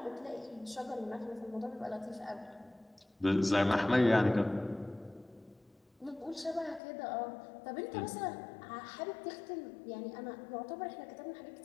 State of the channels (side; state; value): right; drops out; at 6.8 s